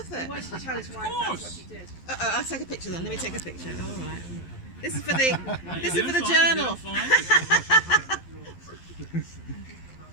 it? He wants to tell his wife that's what he did. I'll take a picture then. Let me take a picture. All right. This is for the. This is You're for the fine, journal. you're fine.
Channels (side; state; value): right; late; 11 ms